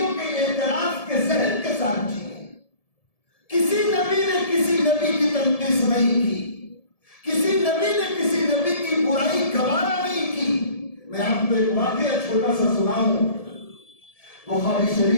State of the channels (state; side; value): late; right; 1.7 ms